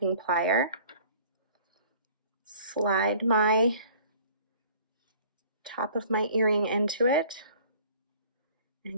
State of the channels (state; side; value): inverted; both; correlation -0.51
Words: plier. Slide my top of my earring into it